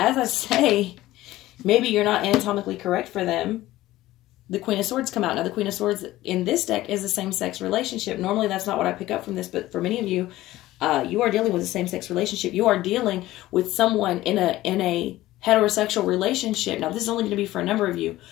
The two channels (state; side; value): quieter; right; 16.2 dB